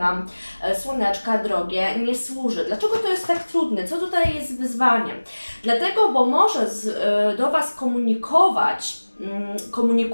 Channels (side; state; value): both; inverted; correlation -1.00